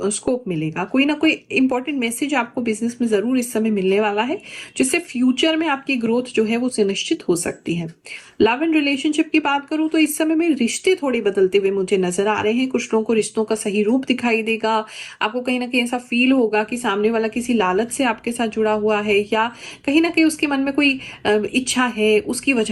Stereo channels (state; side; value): identical; both; correlation 1.00